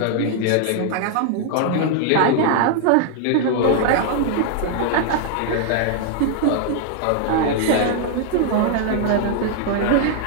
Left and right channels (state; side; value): different; both; correlation 0.00